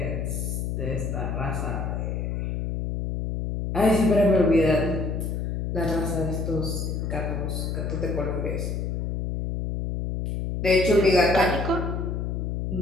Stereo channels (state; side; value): noise; left; hum, 2 dB below the sound